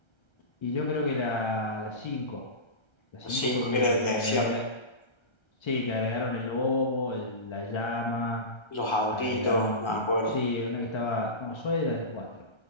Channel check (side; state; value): right; late; 1.3 ms